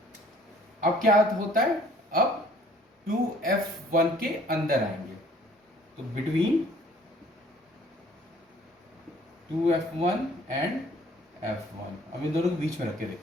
अब क्या होता है, अब 2f1 के अंदर आएंगे, तो बिटवीन 2f1 एंड f1, अब इन दोनों के बीच में रख के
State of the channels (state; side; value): normal; both; correlation 0.56